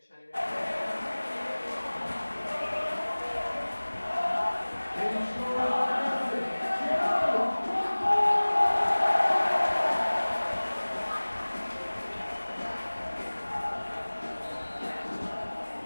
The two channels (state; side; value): inverted; both; correlation -1.00